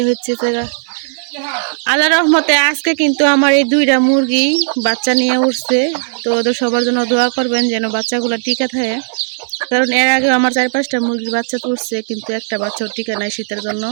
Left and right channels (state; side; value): silent; left; digital silence